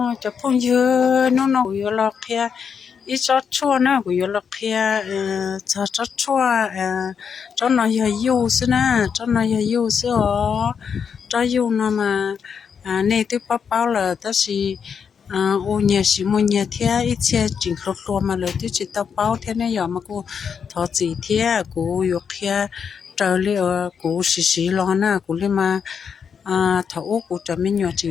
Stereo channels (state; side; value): quieter; right; 6.8 dB